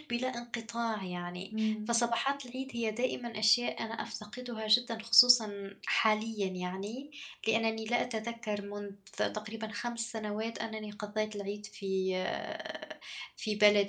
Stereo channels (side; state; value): both; identical; correlation 1.00